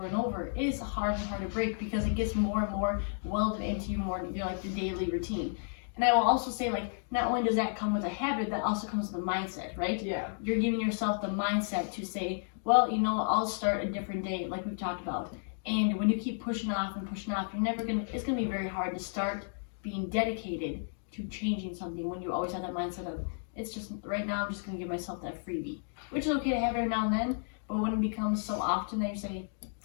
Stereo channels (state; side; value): silent; right; digital silence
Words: and over, it is hard and hard to break because it gets more and more welded into your like the daily routine. And I will also say, like, not only does that come with a habit, that also comes with a mindset, right? Yeah. You're giving yourself the mindset to say, well, I'll start a different day, like we've talked about. And when you keep pushing off, it's gonna be very hard to start being dedicated to changing something when you always have that mindset of, it's just, right now I'm just gonna give myself that freebie. Which is okay to have every now and then, but when it becomes so often that you say,